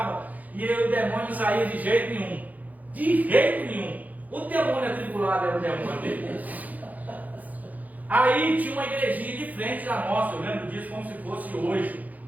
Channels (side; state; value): left; late; 0.079 ms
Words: e o demônio não saía de jeito nenhum. De jeito nenhum. O demônio atribulado era o demônio dele. Aí tinha uma igrejinha de frente da nossa, eu lembro disso como se fosse hoje,